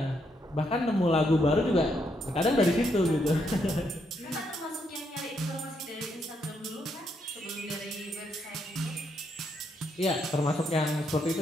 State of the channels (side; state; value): both; normal; correlation 0.77